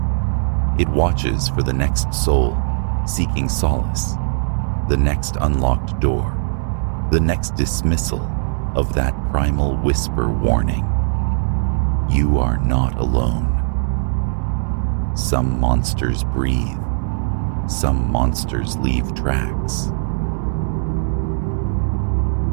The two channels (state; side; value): silent; left; digital silence